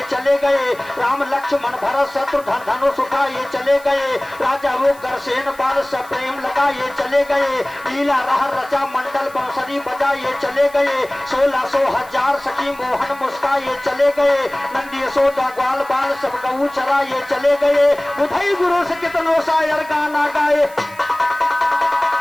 चले गए, राम लक्ष्मण भरत शत्रुघ्न धनुष उठाए चले गए। राजा उग्रसेन बाल से प्रेम लगाए चले गए, लीला रह रचा मंडल बांसुरी बजाए चले गए। 1600 हजार सखी मोहन मुस्काए चले गए, नंदी यशोदा ग्वाल बाल सब गऊ चराए चले गए। बुधई गुरु से कितनों शायर गाना गाए,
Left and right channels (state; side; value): noise; right; hiss, 22 dB below the sound